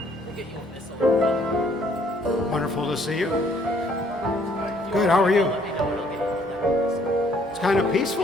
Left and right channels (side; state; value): both; normal; correlation 0.64